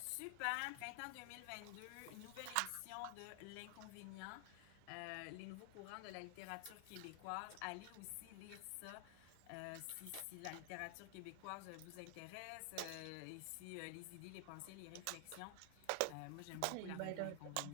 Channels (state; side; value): different; both; correlation 0.00